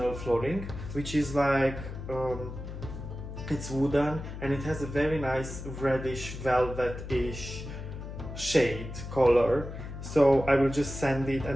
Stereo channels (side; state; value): left; noise; hum, 9 dB below the sound